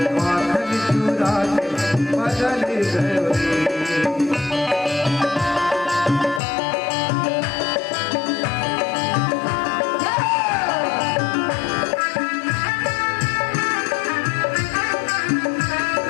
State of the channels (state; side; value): drops out; right; at 6.4 s